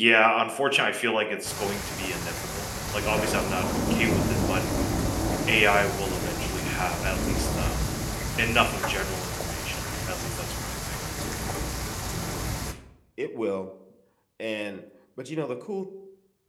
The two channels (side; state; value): both; identical; correlation 1.00